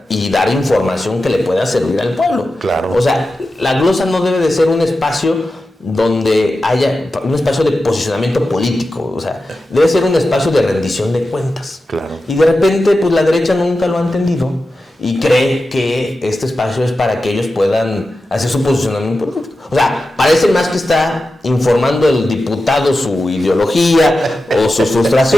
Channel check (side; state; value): both; normal; correlation 0.92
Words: y dar información que le pueda servir al pueblo. Claro. O sea, la glosa no debe de ser un espacio donde haya un espacio de posicionamiento político, o sea, debe ser un espacio de rendición de cuentas. Claro. Y de repente, pues la derecha nunca lo ha entendido y cree que este espacio es para que ellos puedan hacer su posicionamiento político. O sea, parece más que está informando el diputado su ideología o sus